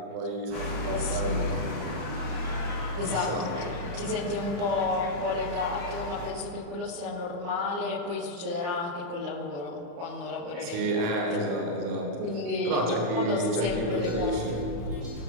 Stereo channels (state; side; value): late; left; 35 ms